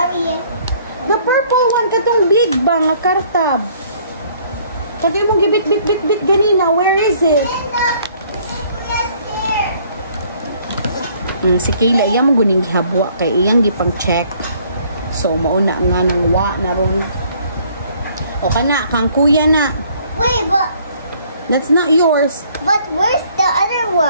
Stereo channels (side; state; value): both; inverted; correlation -0.60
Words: The purple one, katong big ba nga kartab. Katong mong gibit ganina. Where is it? Si Kayla, iyang mo guning gihabwa kay iyang gipang check. So, mauna nga nang wa na ron. O kana, kang kuya na. Wait, but That's not yours. where's the other